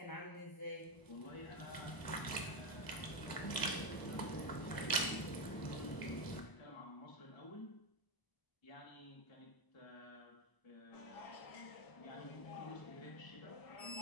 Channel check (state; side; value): late; right; 1.0 ms